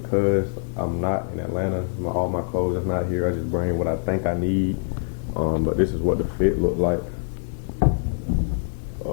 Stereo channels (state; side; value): silent; right; digital silence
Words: I'm not in Atlanta. All my clothes is not here. I just bring what I think I need. But this is what the fit look like.